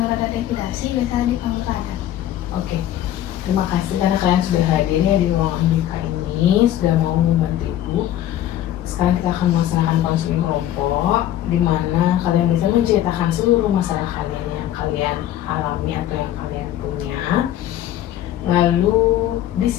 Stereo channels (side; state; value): right; quieter; 12.3 dB